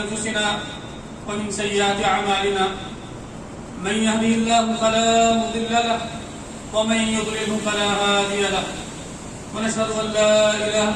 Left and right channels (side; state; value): both; identical; correlation 1.00